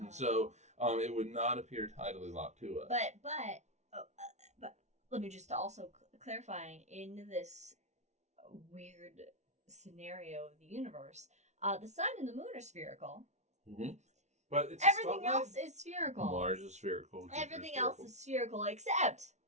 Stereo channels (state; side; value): late; left; 0.33 ms